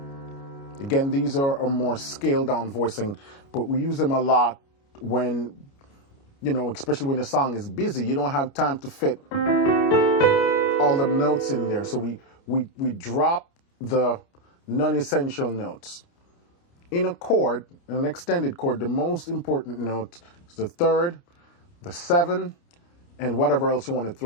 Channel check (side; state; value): right; late; 29 ms